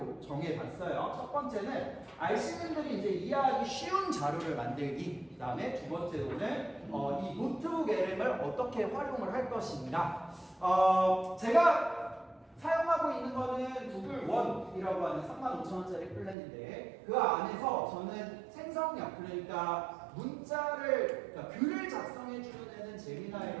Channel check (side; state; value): left; drops out; at 16.4 s